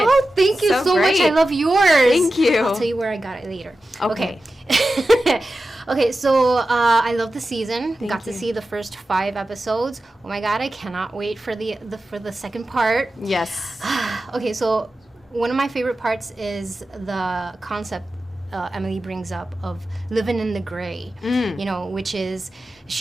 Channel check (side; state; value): both; normal; correlation 0.93